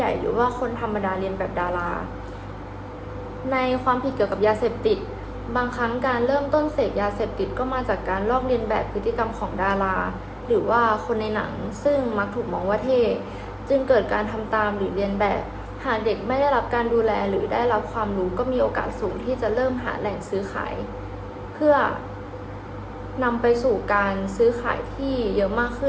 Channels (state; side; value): identical; both; correlation 1.00